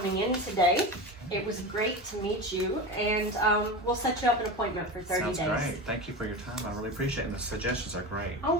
in today. It was great to meet you, and we'll set you up an appointment for 30 Sounds days. great. Thank you for your time. I really appreciate it. And the suggestions are great. Oh,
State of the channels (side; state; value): both; normal; correlation 0.25